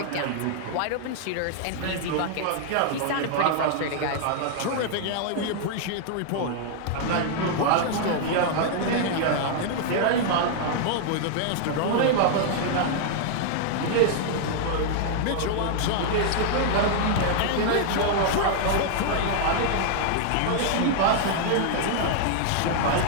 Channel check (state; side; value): different; both; correlation 0.00